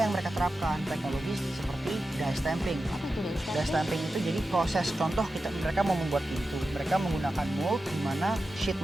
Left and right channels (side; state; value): both; normal; correlation 0.92